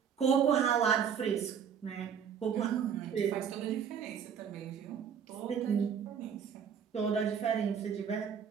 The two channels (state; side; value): quieter; left; 7.6 dB